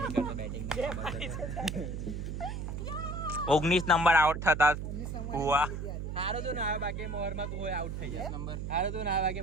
બેટિંગ 19 નંબર આઉટ થતા હુआ. હારો તો ના આવે બાકી મોહરમાં તું હોય આઉટ થઈ જાય નંબર હારો તો ના આવે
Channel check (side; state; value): right; noise; hum, 5 dB below the sound